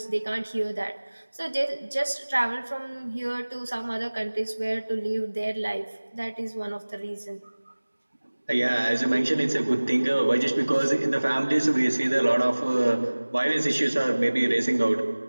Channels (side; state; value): both; inverted; correlation -1.00